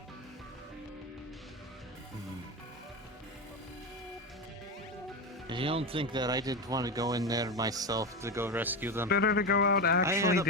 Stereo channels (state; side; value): normal; both; correlation 0.17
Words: You don't think that I didn't want to go in there myself to go rescue them? Better to go out I actually had a